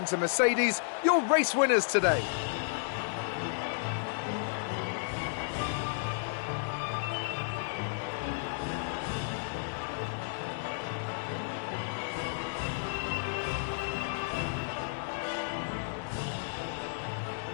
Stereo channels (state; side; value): silent; right; digital silence